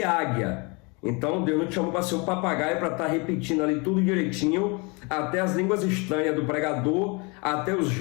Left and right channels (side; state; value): right; quieter; 30.0 dB